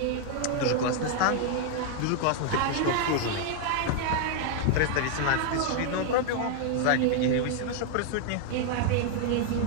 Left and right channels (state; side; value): different; both; correlation 0.00